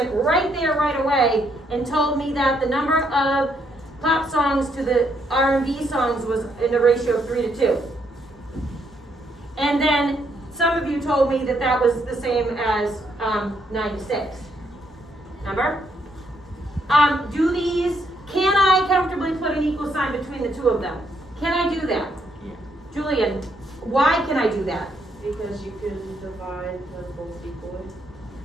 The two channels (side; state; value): both; normal; correlation 0.74